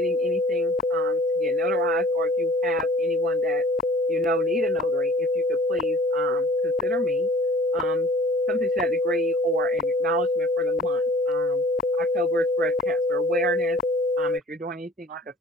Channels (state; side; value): normal; both; correlation 0.49